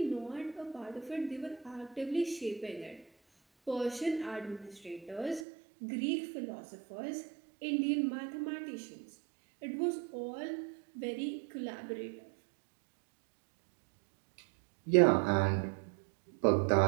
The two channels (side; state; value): left; drops out; at 5.5 s